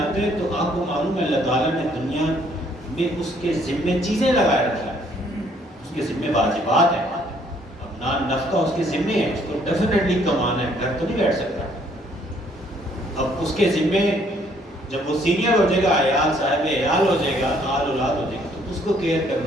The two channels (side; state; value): both; normal; correlation 0.64